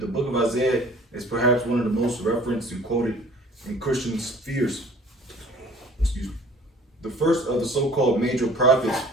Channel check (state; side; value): normal; both; correlation 0.50